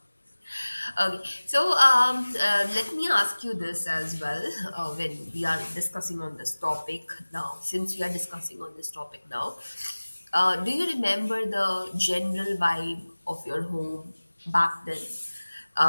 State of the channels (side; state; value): both; inverted; correlation -1.00